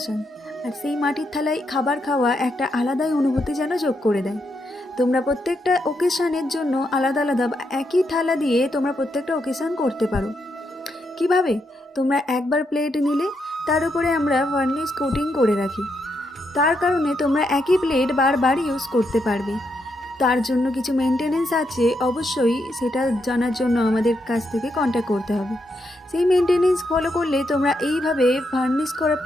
আর সেই মাটির থালায় খাবার খাওয়া একটা আলাদাই অনুভূতি যেন যোগ করে দেয়। তোমরা প্রত্যেকটা ওকেশনের জন্য আলাদা আলাদা বা একই থালা দিয়ে তোমরা প্রত্যেকটা ওকেশন করতে পারো। কিভাবে? তোমরা একবার প্লেট নিলে, তার উপরে আমরা ভার্নিশ কোটিং করে রাখি। তার কারণে তোমরা একই প্লেট বারবার ইউজ করতে পারবে। তার জন্য কিছু মেনটেনেন্স আছে, অবশ্যই সেটা জানার জন্য আমাদের কাছ থেকে কন্ট্যাক্ট করতে হবে। সেই মেনটেনেন্স ফলো করলে তোমরা এইভাবে ভার্নিশ করা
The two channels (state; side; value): normal; both; correlation 0.81